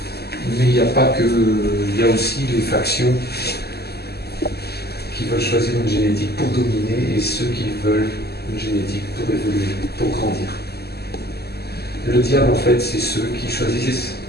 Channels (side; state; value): right; late; 0.46 ms